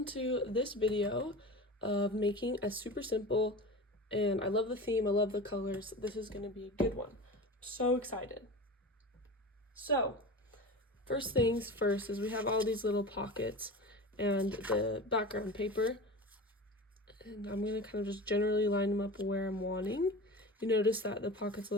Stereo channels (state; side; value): normal; both; correlation 0.32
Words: to this video of making a super simple, and I love the theme, I love the colors. This is going to be a good one. So excited. So, first things first is we have all these little pockets and the background paper. And I'm going to kind of just generally line them up where I'm wanting. You notice that the pocket's a